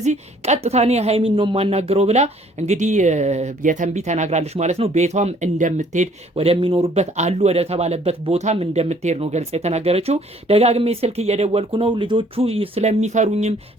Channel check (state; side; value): normal; both; correlation 0.60